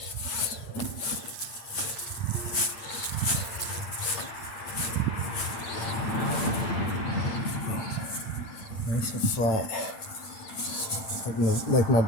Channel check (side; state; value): right; late; 8.8 ms